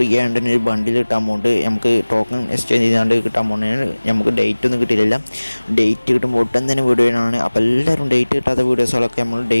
ആയിട്ട് ഒരു ബണ്ടിൽ കിട്ടാൻ പോകുന്നുണ്ട്. നമുക്ക് ടോക്കൺ എക്സ്ചേഞ്ച് ചെയ്താണ്ട് കിട്ടാൻ പോകുന്നതാണ്. നമുക്ക് ഡേറ്റ് ഒന്നും കിട്ടിയില്ല. ഡേറ്റ് കിട്ടുമ്പോൾ ഒട്ടും തന്നെ വീഡിയോയാണ്. അപ്പോൾ എല്ലാവരും ഡേറ്റ് കിട്ടാത്ത വീഡിയോസുകളൊക്കെ നമ്മൾ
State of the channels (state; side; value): inverted; both; correlation -1.00